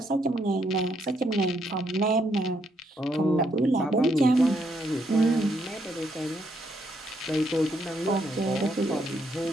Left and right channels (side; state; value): both; normal; correlation 0.75